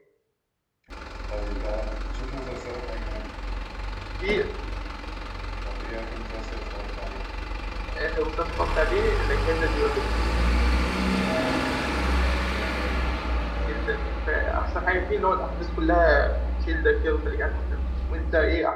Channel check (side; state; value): both; identical; correlation 1.00